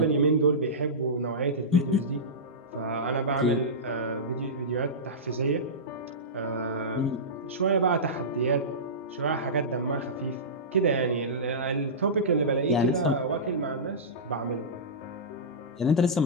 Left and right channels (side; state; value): both; normal; correlation -0.17